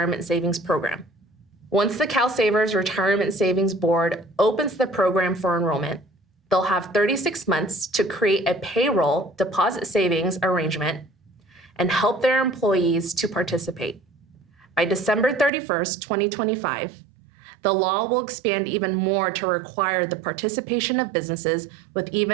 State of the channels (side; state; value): left; drops out; at 15.5 s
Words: savings program. Once the CalSavers Retirement Savings Board opens the program for enrollment, they'll have 36 months to create a payroll deposit savings arrangement and help their employees to participate. By December 31st, 2025, the law will expand even more to require the participation of businesses with